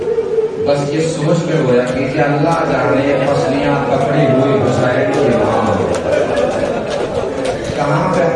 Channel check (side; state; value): both; identical; correlation 1.00